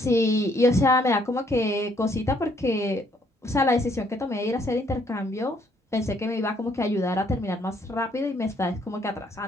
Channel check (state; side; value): normal; both; correlation 0.67